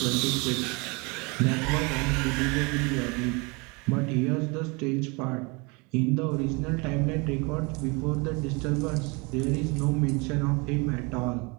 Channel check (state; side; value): quieter; left; 28.7 dB